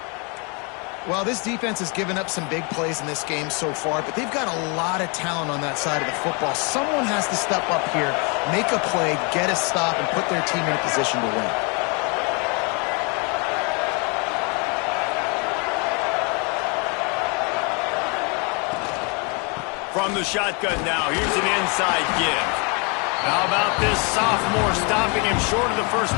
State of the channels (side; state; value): right; quieter; 33.2 dB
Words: Well, this defense has given up some big plays in this game so far, but they've got a lot of talent on that side of the football. Someone has to step up here, make a play, get a stop, and put their team in a position to win. From the shotgun now, here's an inside give. How about this sophomore stopping him short of the 1st